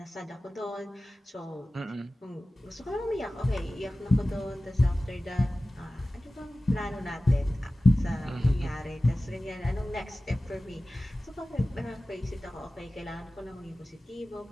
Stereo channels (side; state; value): both; normal; correlation 0.96